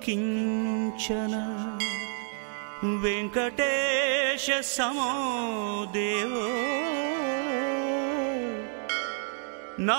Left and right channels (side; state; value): left; silent; 59 dB below the other